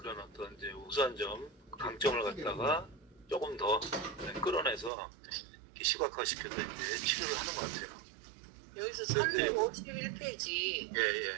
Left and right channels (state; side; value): drops out; left; at 4.9 s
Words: 어떤 이제 우수한 점, 강점을 갖다가 조금 더 끌어내서 이렇게 시각화시켜서 이제 치료를 하는 것 같아요. 여기서 351페이지 예.